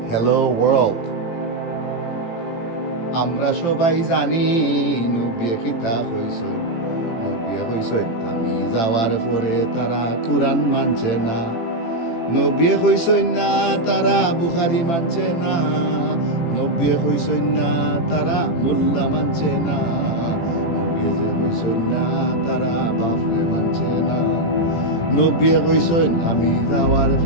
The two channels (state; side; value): late; right; 18 ms